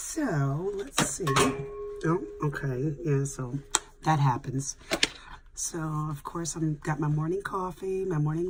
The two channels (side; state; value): both; identical; correlation 1.00